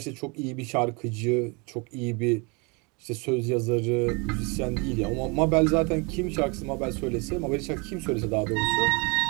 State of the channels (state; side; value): quieter; left; 30.4 dB